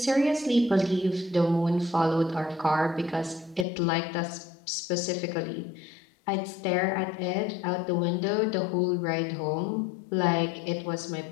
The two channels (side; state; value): right; drops out; at 3.7 s